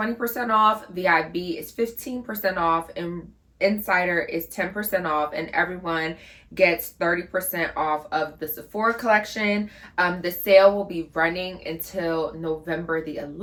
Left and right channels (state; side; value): identical; both; correlation 1.00